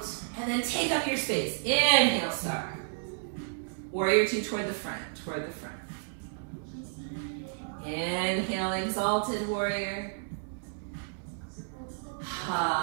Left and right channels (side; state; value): left; silent; 57 dB below the other